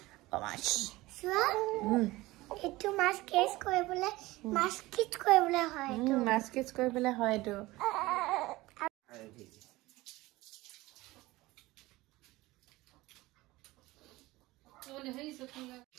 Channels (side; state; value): left; quieter; 19.5 dB